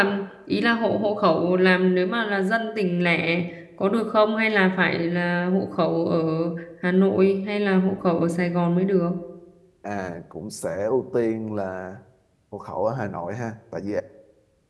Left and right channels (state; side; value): identical; both; correlation 1.00